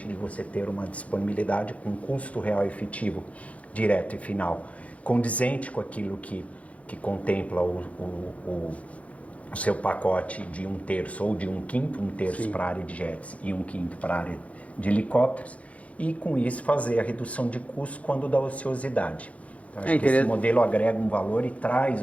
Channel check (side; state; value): right; late; 0.066 ms